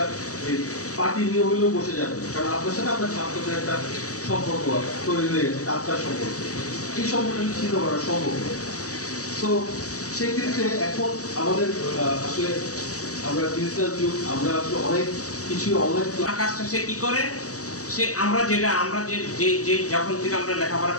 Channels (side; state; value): right; late; 0.66 ms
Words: পার্টি নিয়ে হলেও বসে যাবেন, কারণ আপনার সাথে আপনার ছাত্রদের একটা সম্পর্ক তৈরি হয়ে গেছে, আত্মার সম্পর্ক। এই সম্পর্কটা ছিন্ন করা সম্ভব। তো সেই ক্ষেত্রে এখন আমাদের আসলে আমরা ডিজিটাল যুগ, আমরা আসলে অনেক কিছু অনলাইন কাজটা সে কি করে, সে আমরা যে যখন থেকে আমরা লেখাপড়া